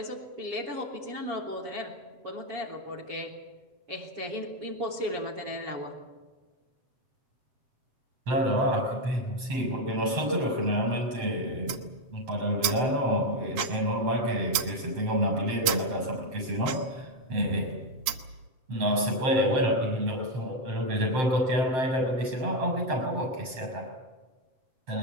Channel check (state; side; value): late; left; 8.2 ms